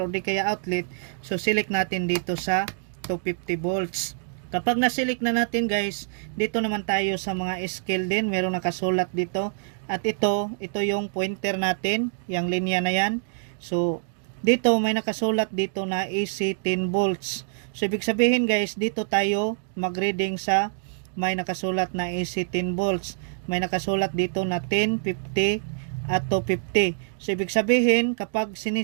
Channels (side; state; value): left; silent; digital silence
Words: di kaya outlet, so select natin dito sa 250 volts. Kapag na-select na natin guys, dito naman tayo sa mga scale din. Merong nakasulat dito. At ito yung pointer natin. Yung linya na yan. So, dito may nakasulat dito na AC 10 volts. So, ibig sabihin guys, dito tayo mag-reading sa may nakasulat na AC 10 volts. May nakasulat dito na 10, 50 at 250. So, ibig sabihin, kapag